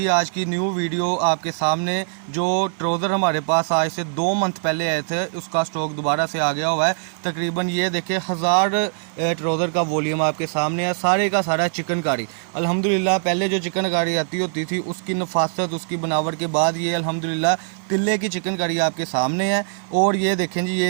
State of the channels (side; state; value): left; silent; digital silence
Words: आज की न्यू वीडियो आपके सामने। जो ट्राउज़र हमारे पास आज से 2 मंथ पहले आए थे उसका स्टॉक दोबारा से आ गया हुआ है। तकरीबन ये देखिए 1000 ट्राउज़र का वॉल्यूम आपके सामने है, सारे का सारा चिकनकारी। अल्हम्दुलिल्लाह पहले जो चिकनकारी आती होती थी उसकी नफासत उसकी बनावट के बाद ये अल्हम्दुलिल्लाह तिल्ले की चिकनकारी आपके सामने है। और ये देखें जी, ये